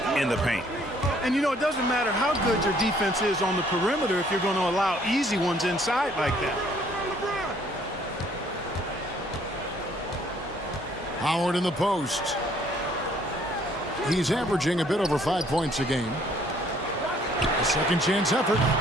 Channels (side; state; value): both; normal; correlation 0.62